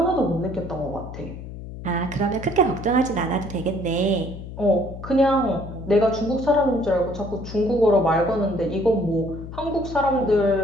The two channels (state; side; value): noise; left; hum, 11 dB below the sound